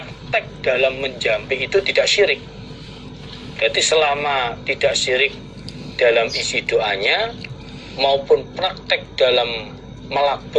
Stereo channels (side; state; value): both; identical; correlation 1.00